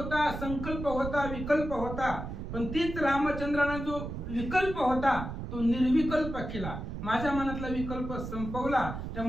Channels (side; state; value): right; noise; rumble, 7 dB below the sound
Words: संकल्प होता, विकल्प होता. पण तीच रामचंद्राने जो विकल्प होता तो निर्विकल्प केला. माझ्या मनातला विकल्प संपवला,